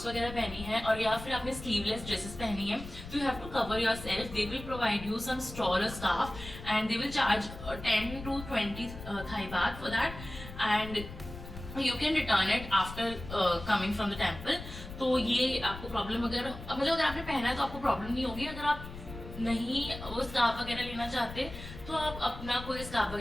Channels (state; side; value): noise; left; rumble, 12 dB below the sound